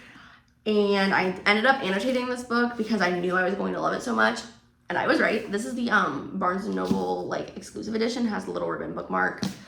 And I ended up annotating this book because I knew I was going to love it so much. And I was right. This is the Barnes & Noble like exclusive edition, has the little ribbon bookmark.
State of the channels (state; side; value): identical; both; correlation 1.00